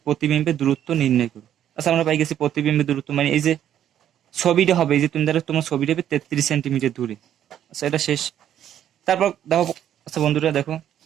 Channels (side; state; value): left; quieter; 10.6 dB